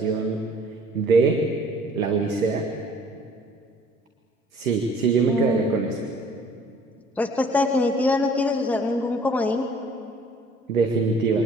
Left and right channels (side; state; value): both; normal; correlation 0.55